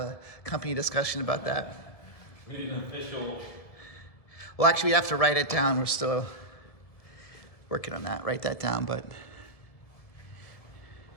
company discussion about that. We need an official. Well, actually, we have to write it down. We're still working on that. Write that down, but.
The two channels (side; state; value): right; late; 1.7 ms